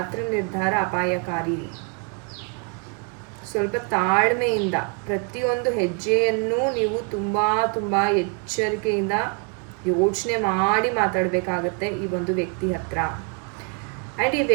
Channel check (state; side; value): quieter; left; 35.4 dB